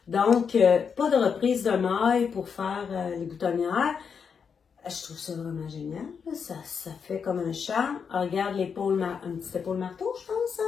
Donc, pas de reprise de maille pour faire les boutonnières. Je trouve ça vraiment génial. Ça fait comme un charme. Regarde l'épaule, un petit épaule marteau, je pense.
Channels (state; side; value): quieter; right; 6.4 dB